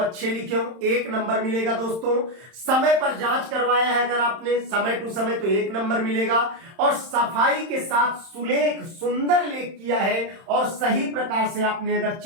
लिखे हों, 1 नंबर मिलेगा दोस्तों। समय पर जांच करवाया है अगर आपने समय टू समय तो 1 नंबर मिलेगा। और सफाई के साथ सुलेख सुंदर लेख किया है और सही प्रकार से आपने अगर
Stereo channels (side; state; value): left; late; 31 ms